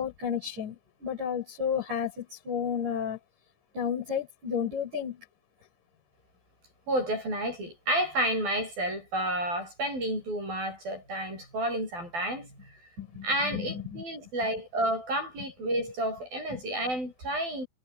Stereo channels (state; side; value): late; left; 12 ms